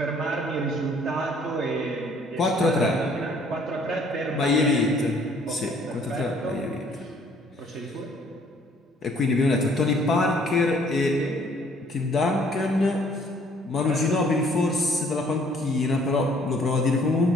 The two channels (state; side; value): normal; both; correlation 0.60